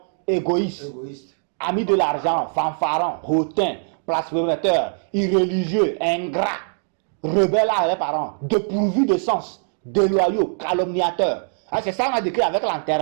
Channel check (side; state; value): left; silent; 64 dB below the other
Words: égoïstes. Amis de l'argent, fanfarons, hautains, blasphémateurs, irréligieux, ingrats, rebelles à leurs parents, dépourvus de sens, déloyaux, calomniateurs. C'est ça qu'on a décrit avec